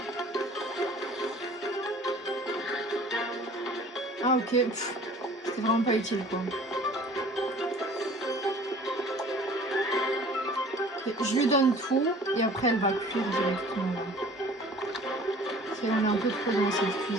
Ah ok, c'était vraiment pas utile quoi. Je lui donne tout et après elle va cuire directement. On est un peu trop dans cette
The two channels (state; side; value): normal; both; correlation 0.48